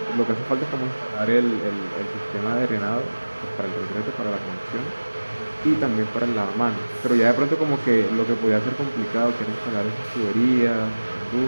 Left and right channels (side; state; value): both; inverted; correlation -1.00